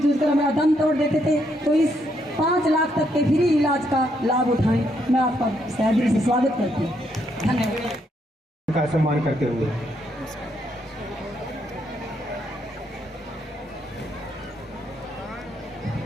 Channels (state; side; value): normal; both; correlation 0.75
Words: कर हमारा दम तोड़ देते थे, तो इस 5 लाख तक के फ्री इलाज का लाभ उठाएं। मैं आपका दिल से स्वागत करती हूँ। धन्यवाद। का सम्मान करते हुए